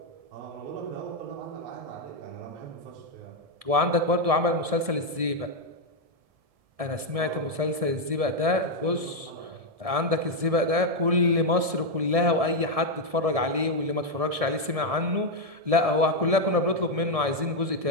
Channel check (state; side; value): late; left; 1.7 ms